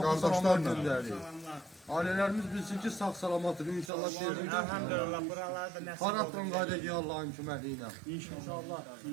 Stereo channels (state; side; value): drops out; left; at 3.9 s